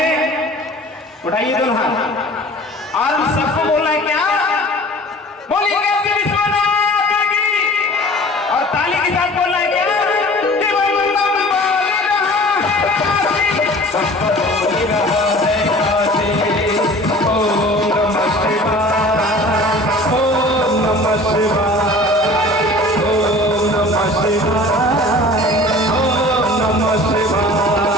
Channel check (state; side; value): normal; both; correlation 0.44